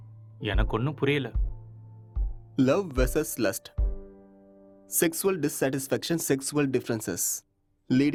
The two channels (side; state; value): both; identical; correlation 1.00